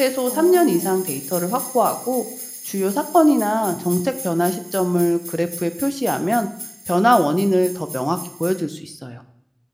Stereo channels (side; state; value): both; identical; correlation 1.00